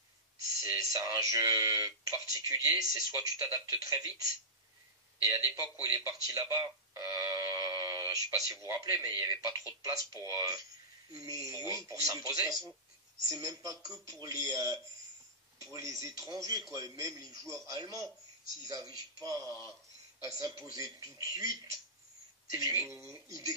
c'est un jeu particulier, c'est soit tu t'adaptes très vite, et à l'époque où il est parti là-bas, je sais pas si vous vous rappelez, mais il n'y avait pas trop de place pour s'imposer. C'est même pas que pour les étrangers, quoi. Et même les joueurs allemands, s'ils n'arrivent pas à s'imposer tout de suite, ils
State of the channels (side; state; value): both; normal; correlation -0.16